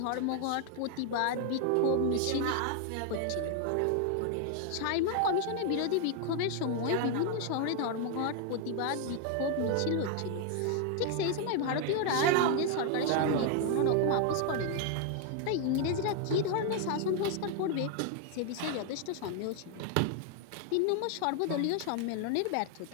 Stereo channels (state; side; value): different; both; correlation 0.00